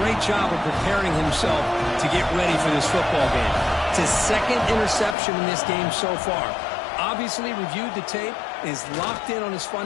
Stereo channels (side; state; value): right; drops out; at 5.2 s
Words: job of preparing himself to get ready for this football game. It's his second interception in this game so far. Obviously reviewed the tape, is locked in on his